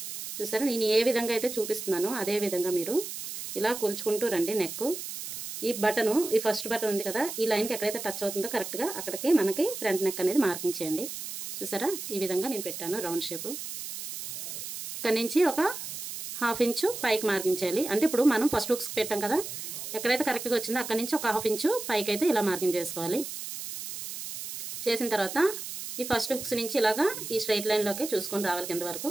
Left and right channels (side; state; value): right; noise; hiss, 8 dB below the sound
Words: చూసారా నేను ఏ విధంగా అయితే చూపిస్తున్నానో అదే విధంగా మీరు ఇలా కొలుచుకుంటూ రండి. నెక్ ఈ బటను, ఈ ఫస్ట్ బటన్ ఉంది కదా, ఈ లైన్కి ఎక్కడైతే టచ్ అవుతుందో కరెక్ట్గా అక్కడికి మనకి ఫ్రంట్ నెక్ అనేది మార్కింగ్ చేయండి. చూసారా, ఈ విధంగా నేను పెట్టాను రౌండ్ షేపు. ఇక్కడ నుంచి ఒక 1/2 ఇంచు పైకి మార్కింగ్ చేయాలి. అంటే ఇప్పుడు మనం ఫస్ట్ హుక్స్ పెట్టాం కదా, ఎక్కడైతే కరెక్ట్గా వచ్చిందో అక్కడ నుంచి ఒక 1/2 ఇంచు పైకి అయితే ఇలా మార్కింగ్ చేసుకోవాలి. చేసిన తర్వాత ఈ ఫస్ట్ హుక్స్ నుంచి ఇలాగా ఈ స్ట్రైట్ లైన్లోకి చూసుకొని రావాలి కింద వరకు.